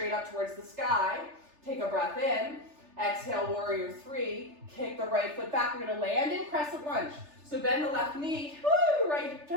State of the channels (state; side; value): late; left; 3.4 ms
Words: up towards the sky. Take a breath in. Exhale, warrior three. Kick the right foot back. We're gonna land in crescent lunge. So bend the left knee, woo, right